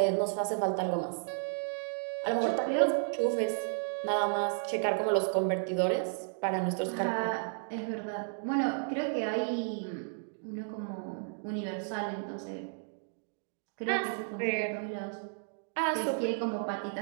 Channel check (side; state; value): left; silent; digital silence